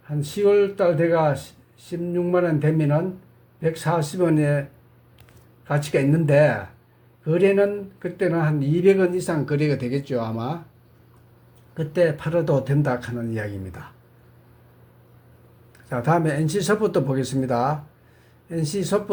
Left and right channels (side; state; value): both; identical; correlation 1.00